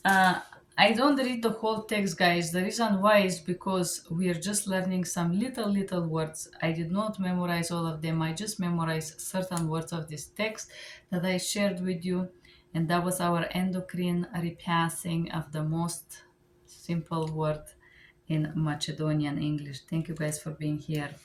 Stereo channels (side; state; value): both; identical; correlation 1.00